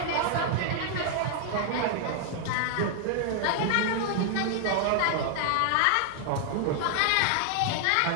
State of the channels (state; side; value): different; both; correlation 0.00